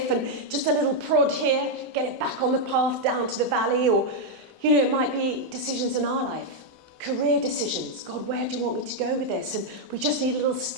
and just a little prod here, get it back on the path down to the valley. Or, it might be decisions in our life, career decisions. God, where do you want me to go with this? And we just need a little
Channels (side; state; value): both; normal; correlation 0.00